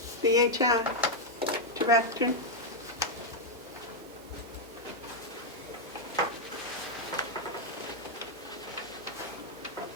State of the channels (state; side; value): normal; both; correlation 0.00